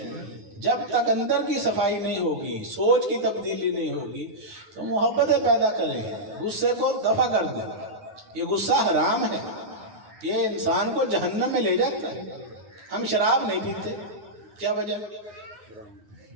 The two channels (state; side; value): late; left; 9.6 ms